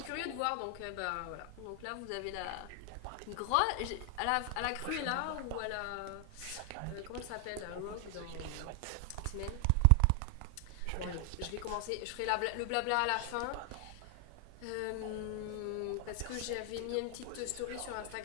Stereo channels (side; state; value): both; different; correlation 0.00